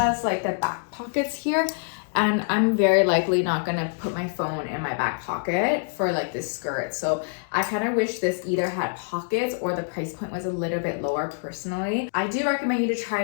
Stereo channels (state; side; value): silent; right; digital silence